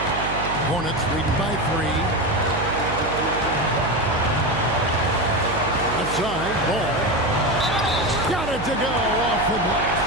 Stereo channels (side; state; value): right; noise; hum, 7 dB below the sound